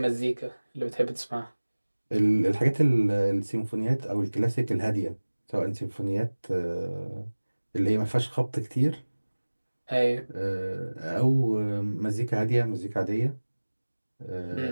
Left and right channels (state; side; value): inverted; both; correlation -1.00